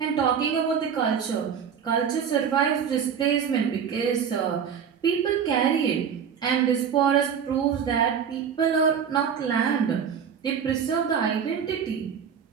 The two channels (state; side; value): quieter; left; 7.5 dB